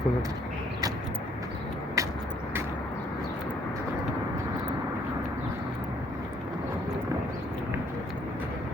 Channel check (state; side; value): normal; both; correlation 0.66